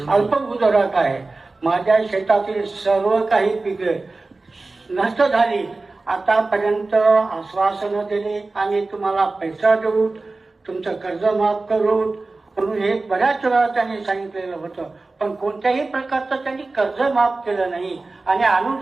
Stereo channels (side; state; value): left; quieter; 3.4 dB